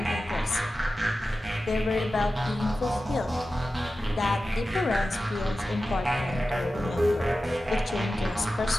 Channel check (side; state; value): both; normal; correlation 0.94